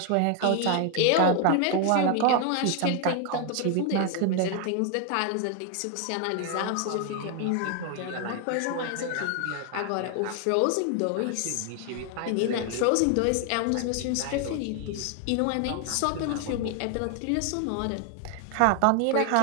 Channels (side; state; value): both; different; correlation 0.00